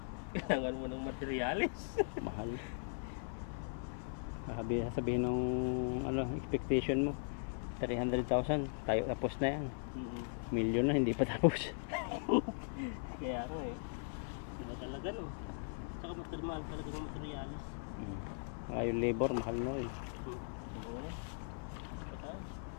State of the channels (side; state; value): right; silent; 52 dB below the other